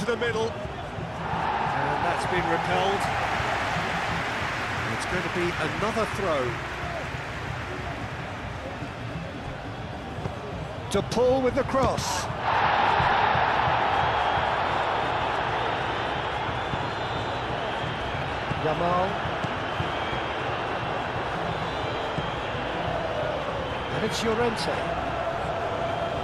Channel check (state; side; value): identical; both; correlation 1.00